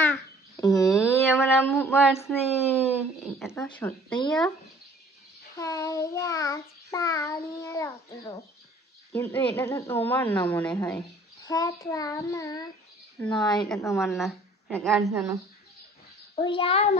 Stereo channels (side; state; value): both; normal; correlation 0.53